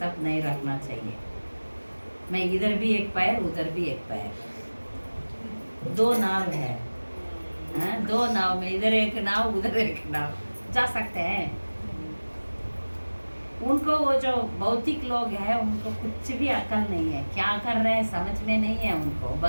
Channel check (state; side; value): inverted; both; correlation -1.00